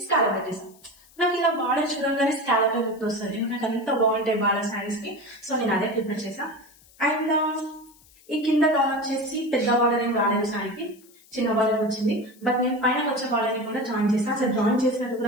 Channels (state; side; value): noise; left; hiss, 27 dB below the sound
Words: స్కాలప్ పెట్టేసాను. నాకు ఇలా బార్డర్ చూడంగానే స్కాలప్ లుక్ వస్తుంది, నాకు అంత బాగుంటాయి బార్డర్ శారీస్ కి. సో నేను అదే ప్రిఫర్ చేసా. అండ్ ఈ కింద డౌన్ వచ్చేసి పెద్ద బార్డర్ ఏం రాలేదు శారీకి, చిన్న బార్డర్ వచ్చింది. బట్ నేను పైన వచ్చే బార్డర్ ని కూడా జాయిన్ చేస్తాను. అసలు జాయిన్ చేసినట్టు